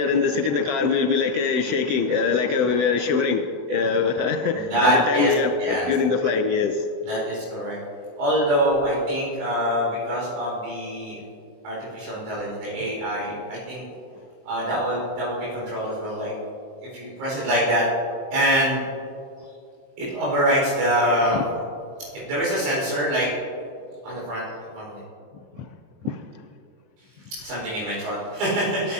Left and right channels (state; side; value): late; left; 24 ms